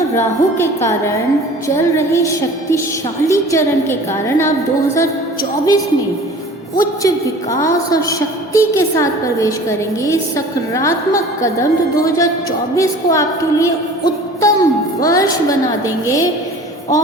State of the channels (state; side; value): normal; both; correlation 0.44